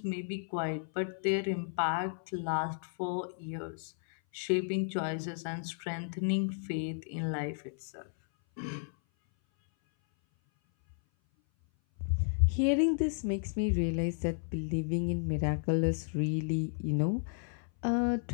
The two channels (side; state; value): right; silent; 56 dB below the other